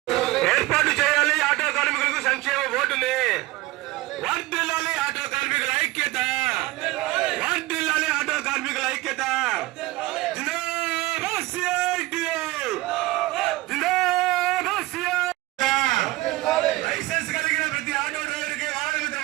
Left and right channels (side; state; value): left; quieter; 19.5 dB